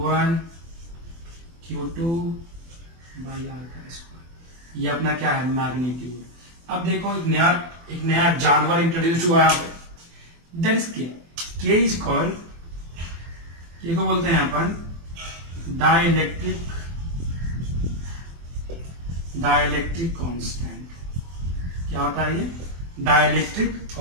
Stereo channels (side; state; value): left; late; 24 ms